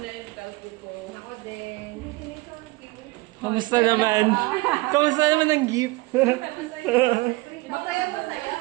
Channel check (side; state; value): left; quieter; 23.0 dB